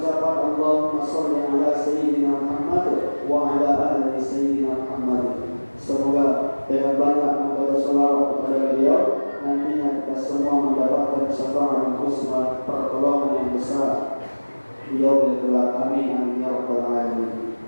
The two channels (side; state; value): both; inverted; correlation -1.00